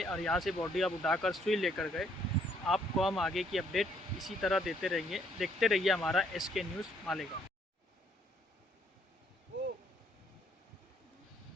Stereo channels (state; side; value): normal; both; correlation 0.68